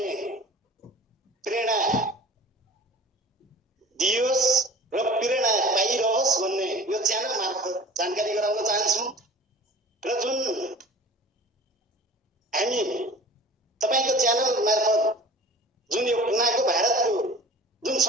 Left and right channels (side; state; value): both; normal; correlation 0.43